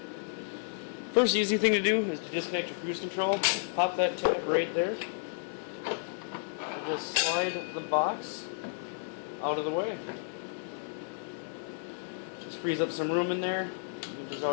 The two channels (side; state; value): right; silent; digital silence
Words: First easy thing to do is to disconnect your cruise control. Pop that tab right there. And just slide the box out of the way. Just frees up some room in there. You can just